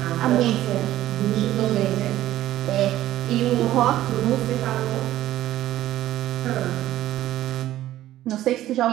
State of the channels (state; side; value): quieter; left; 13.9 dB